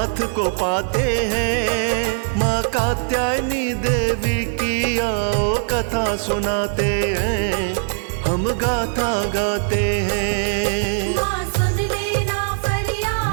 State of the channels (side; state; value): left; silent; digital silence